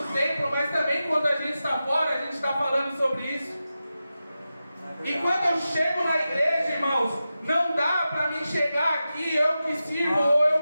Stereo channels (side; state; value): both; inverted; correlation -0.92